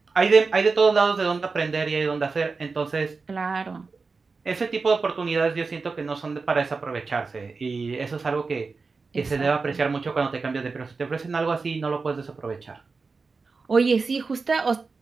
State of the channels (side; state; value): left; quieter; 4.4 dB